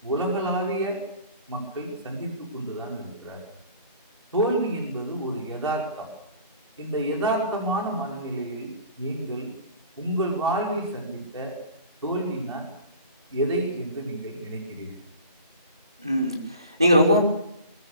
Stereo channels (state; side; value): inverted; both; correlation -0.42